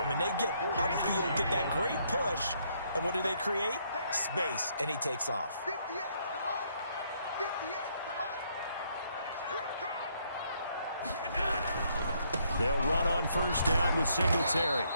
him, and they get upfield, get that great push, and what do they create? Space, and he takes off. 58 to the line. 58 to the line. Here I come. They'll run on first down with Singletary.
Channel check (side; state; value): both; inverted; correlation -0.71